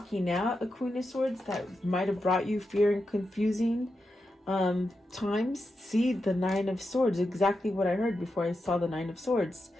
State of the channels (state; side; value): normal; both; correlation 0.88